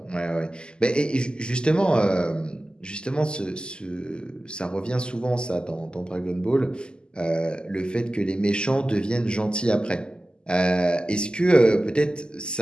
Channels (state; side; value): late; right; 0.048 ms